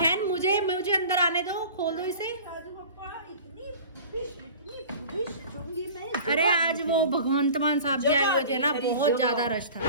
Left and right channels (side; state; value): both; inverted; correlation -0.40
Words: मुझे अंदर आने दो, खोल दो इसे। अरे आज वो भगवंत मान साहब जी आए हुए थे ना, बहुत ज्यादा रश था।